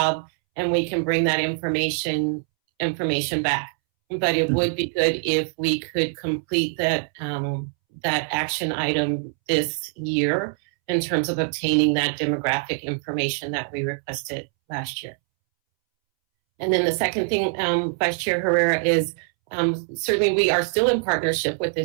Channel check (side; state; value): left; silent; 63 dB below the other